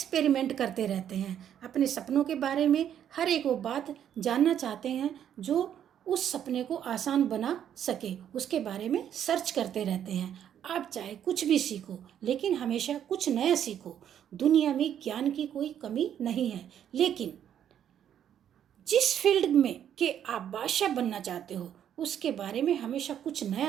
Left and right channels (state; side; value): quieter; left; 9.7 dB